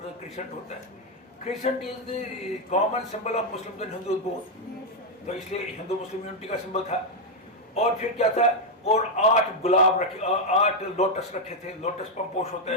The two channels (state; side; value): normal; both; correlation 0.01